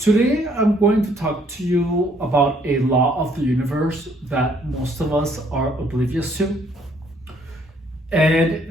I'm going to talk to you about a law of the universe that most of us are oblivious to.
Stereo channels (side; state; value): both; normal; correlation 0.65